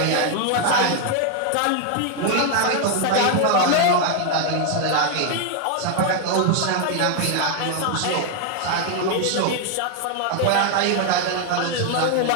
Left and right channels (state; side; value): different; both; correlation 0.01